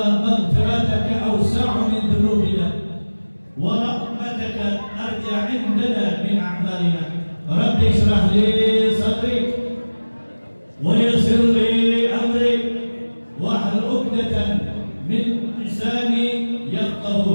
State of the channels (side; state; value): both; inverted; correlation -1.00